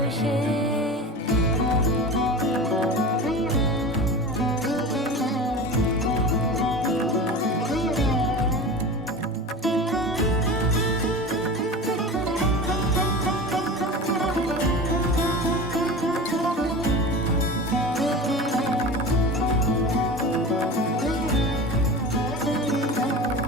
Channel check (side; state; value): both; normal; correlation 0.32